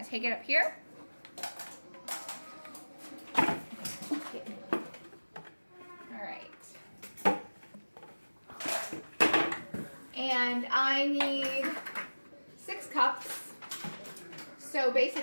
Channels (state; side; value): inverted; both; correlation -1.00